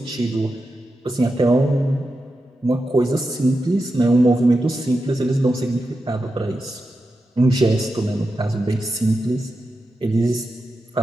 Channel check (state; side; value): normal; both; correlation 0.90